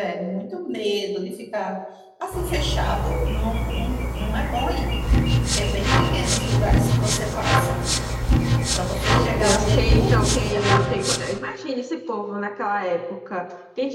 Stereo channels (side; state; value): both; identical; correlation 1.00